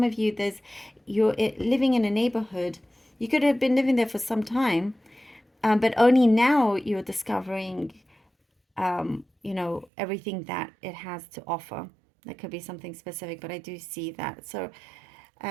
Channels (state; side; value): drops out; left; at 9.9 s